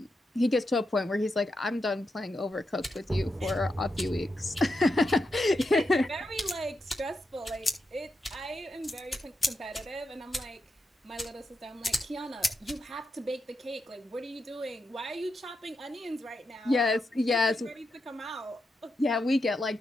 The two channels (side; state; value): both; normal; correlation 0.86